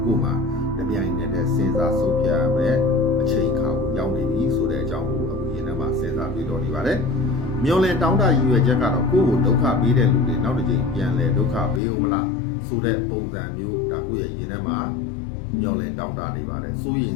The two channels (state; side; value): drops out; right; at 11.8 s